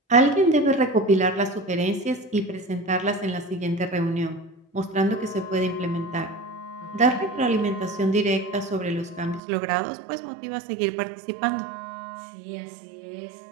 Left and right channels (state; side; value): drops out; left; at 9.4 s